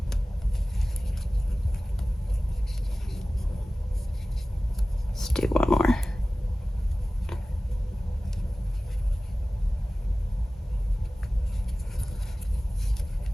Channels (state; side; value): normal; both; correlation 0.97